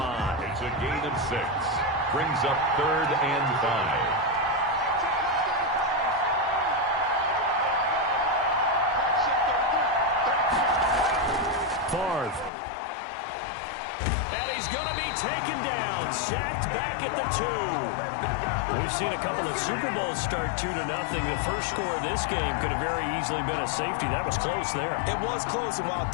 It's a gain of 6. Brings up 3rd and 5. Favre. And he's going to be taken down. Sacked back at the 2. We've seen a couple of Super Bowls start 2-0. The first score of this game could have very easily been a safety. That was close there. It was close, and while it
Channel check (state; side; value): drops out; right; at 12.5 s